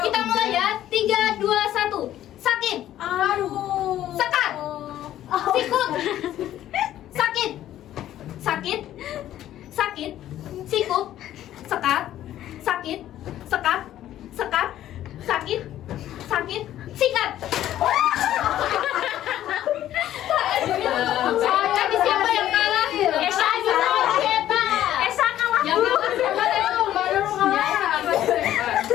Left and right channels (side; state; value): right; quieter; 12.5 dB